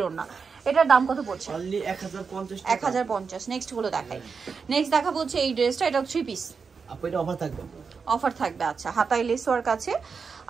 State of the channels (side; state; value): left; quieter; 5.4 dB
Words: ওড়না। এটার দাম কত পড়ছে? অনলি 1050 টাকা। 1050। নেক্সট গুলো দেখাই। নেক্সট দেখাবো হচ্ছে এই ড্রেসটা, এটা 3 পিস। আপু এটা অফার থাকবে। অফার থাকবে, আচ্ছা। হাতায় লেস ওয়ার্ক আছে